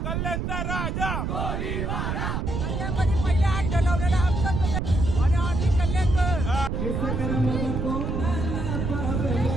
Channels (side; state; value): right; noise; rumble, 1 dB below the sound